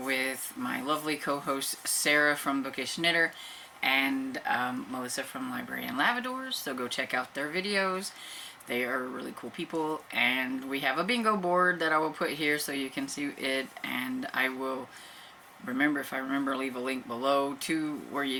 with my lovely co-host Sarah from Bookish Knitter and Melissa from Library and Lavadors, so go check out their videos. They are really cool people, and we have a bingo board that I will put here so you can see it, and I will if I remember, leave a link below to where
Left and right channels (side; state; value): both; identical; correlation 1.00